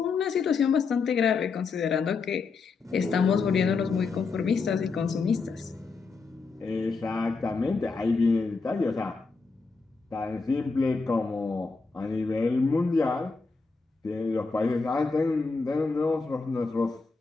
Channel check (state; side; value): quieter; right; 4.5 dB